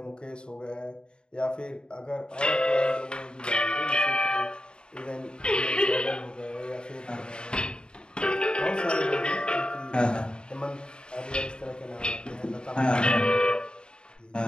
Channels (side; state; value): right; late; 0.050 ms